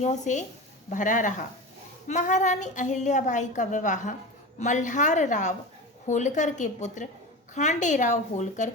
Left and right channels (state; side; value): normal; both; correlation 0.28